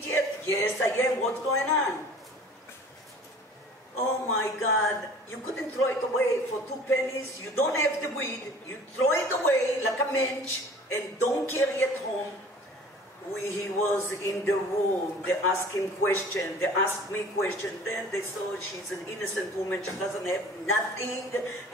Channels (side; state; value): both; normal; correlation 0.47